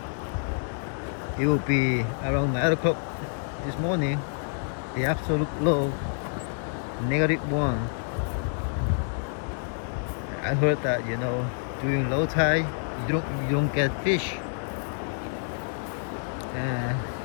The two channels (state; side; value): silent; right; 60 dB below the other